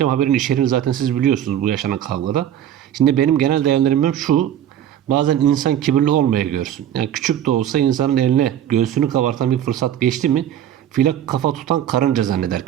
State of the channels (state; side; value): quieter; left; 10.6 dB